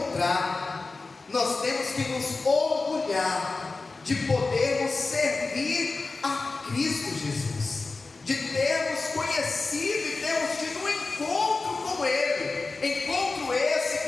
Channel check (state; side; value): quieter; right; 3.7 dB